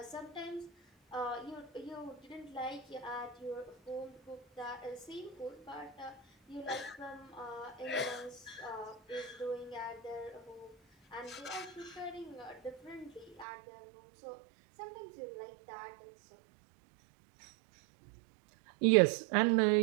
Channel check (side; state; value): left; drops out; at 13.5 s